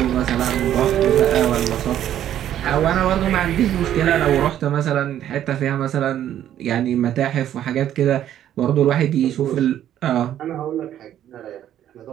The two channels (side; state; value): left; quieter; 11.2 dB